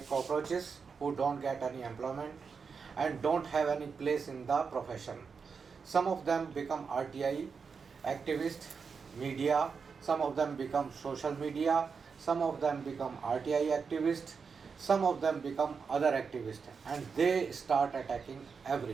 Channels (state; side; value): quieter; left; 5.6 dB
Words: cockroaches who don't get any employment and don't have any place in the profession. Some of them become RTI activists, media, some of them become social media, some of them become RTI activists, some of them become other activists, and they start attacking